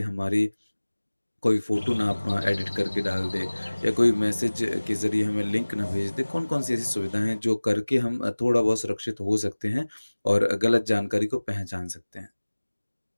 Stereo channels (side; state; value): both; inverted; correlation -1.00